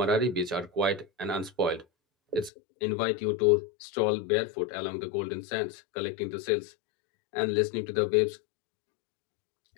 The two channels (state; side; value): drops out; right; at 2.5 s